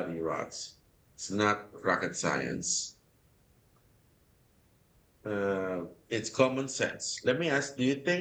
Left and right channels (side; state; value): both; identical; correlation 1.00